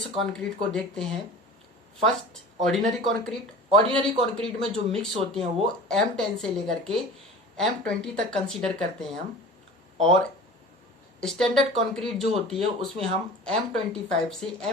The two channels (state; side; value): normal; both; correlation 0.38